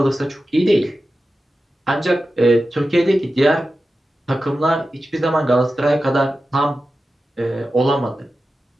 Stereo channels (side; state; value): both; normal; correlation 0.93